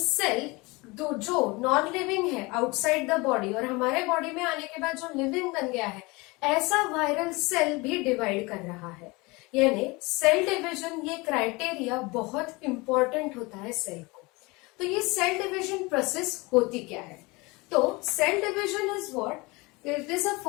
जो नॉन लिविंग है आउटसाइड द बॉडी, और हमारे बॉडी में आने के बाद जो लिविंग बन गया है, ऐसा वायरल सेल भी डिवाइड कर रहा है। यानी सेल डिवीजन ये क्राइटेरिया बहुत इंपॉर्टेंट होता है सेल को। तो ये सेल डिवीजन प्रोसेस होती क्या है, तो cell division is what, it is a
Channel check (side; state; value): right; quieter; 24.7 dB